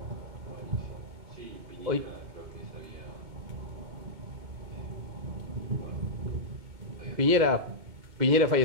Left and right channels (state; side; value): late; left; 2.1 ms